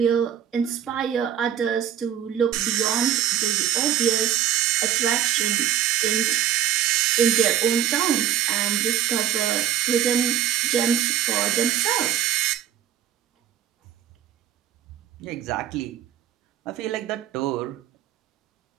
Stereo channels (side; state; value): left; quieter; 10.3 dB